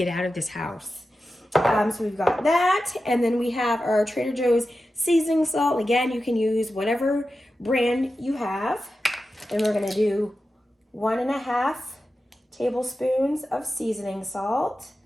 out of this house. So we've got that, and then we have our Trader Joe's seasoning salt. Again, you can use whatever brand you have. And we're gonna do 1.5 tablespoons of seasoning salt.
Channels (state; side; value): normal; both; correlation 0.92